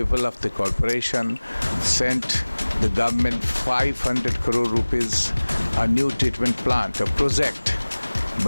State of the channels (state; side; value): inverted; both; correlation -1.00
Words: of the corporation, sent the government 500 crore rupees, a new treatment plant, a project.